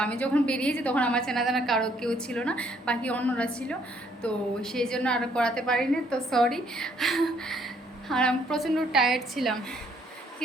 আমি যখন বেরিয়েছি তখন আমার চেনা জানা কারো কেউ ছিল না, বাকি অন্যরা ছিল, তো সেই জন্য আর করাতে পারিনি। তো সরি। আর আমি প্রচণ্ড টায়ার্ড ছিলাম, কি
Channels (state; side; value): normal; both; correlation 0.66